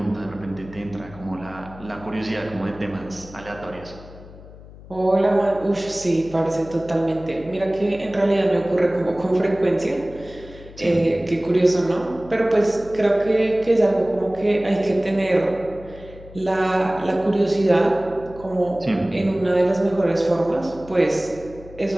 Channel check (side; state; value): left; noise; hum, 18 dB below the sound